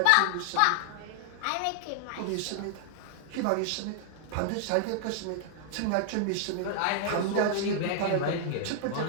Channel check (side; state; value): both; different; correlation 0.00